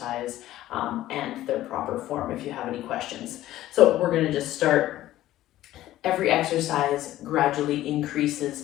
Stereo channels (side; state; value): right; quieter; 14.5 dB